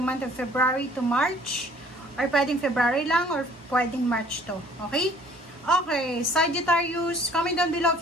of February to March. Or pwedeng February lang or pwedeng March to. Okay? Okay, Sagittarius, comment down below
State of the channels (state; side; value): normal; both; correlation 0.55